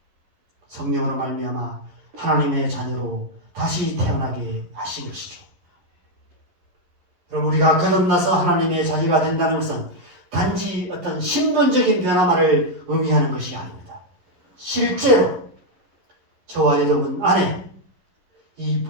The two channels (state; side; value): late; left; 11 ms